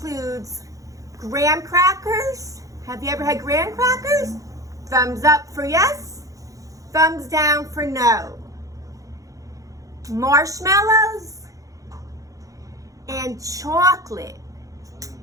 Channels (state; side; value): late; left; 0.16 ms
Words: graham crackers. Have you ever had graham crackers? Thumbs up for yes, thumbs down for no. Marshmallows and chocolate.